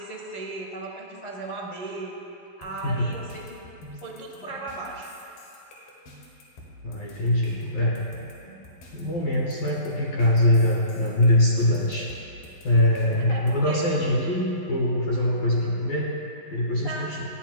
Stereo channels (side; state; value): right; late; 12 ms